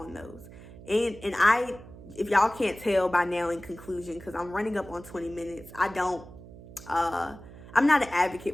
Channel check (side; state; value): right; noise; hum, 17 dB below the sound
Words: those. And if y'all can't tell by now in conclusion, because I'm running up on 20 minutes, I'm not an